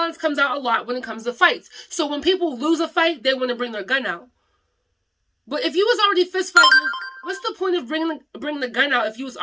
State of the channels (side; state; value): both; identical; correlation 1.00